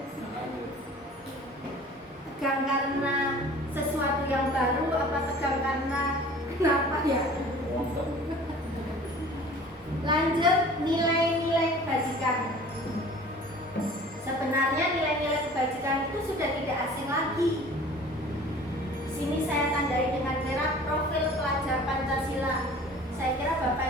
baru apa tegang karena kenapa ya? Lanjut, nilai-nilai kebajikan. Sebenarnya nilai-nilai kebajikan itu sudah tidak asing lagi. Di sini saya tandai dengan merah profil pelajar Pancasila. Saya kira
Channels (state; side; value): normal; both; correlation 0.46